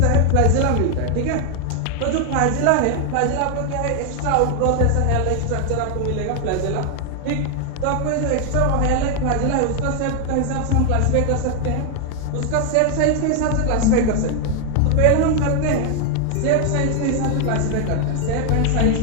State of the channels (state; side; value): different; both; correlation 0.00